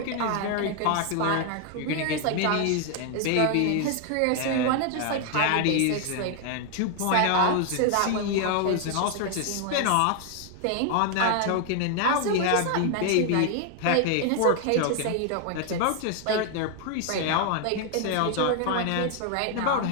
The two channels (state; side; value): different; both; correlation 0.01